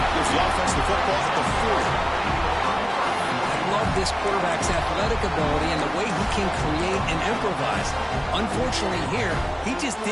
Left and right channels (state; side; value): identical; both; correlation 1.00